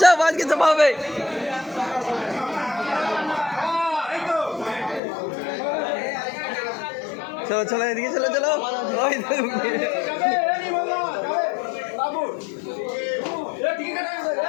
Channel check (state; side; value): drops out; right; at 5.0 s